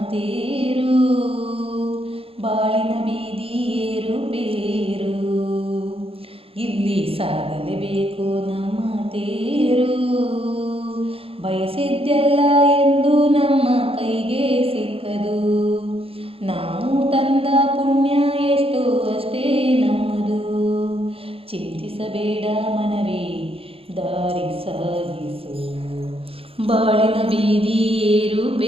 ತೇರು. ಬಾಳಿನ ಬೀದಿ ಏರುಪೇರು, ಇಲ್ಲಿ ಸಾಗಲೇಬೇಕು ನಮ್ಮ ತೇರು. ಬಯಸಿದ್ದೆಲ್ಲ ಎಂದು ನಮ್ಮ ಕೈಗೆ ಸಿಕ್ಕದು, ನಾವು ತಂದ ಪುಣ್ಯ ಎಷ್ಟು ಅಷ್ಟೇ ನಮ್ಮದು. ಚಿಂತಿಸಬೇಡ ಮನವೇ, ದಾರಿ ಸಾಗಿಸು. ಬಾಳಿನ ಬೀದಿ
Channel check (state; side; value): late; left; 0.27 ms